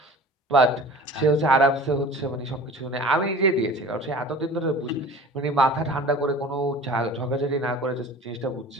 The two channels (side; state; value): both; normal; correlation 0.41